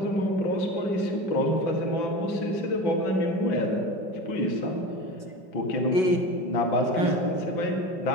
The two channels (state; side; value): late; right; 5.3 ms